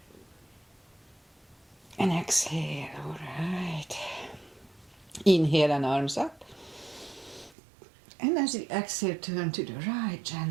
And exhale, all right. Inhale and arms up. And as you exhale, turn to the right,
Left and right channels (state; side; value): drops out; left; at 7.5 s